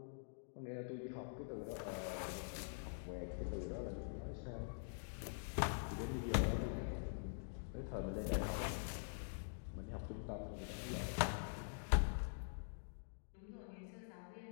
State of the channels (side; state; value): right; silent; digital silence